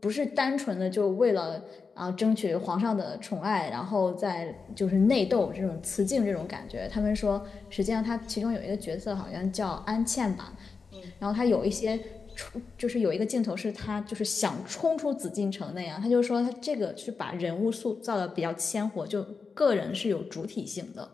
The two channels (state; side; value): quieter; right; 4.9 dB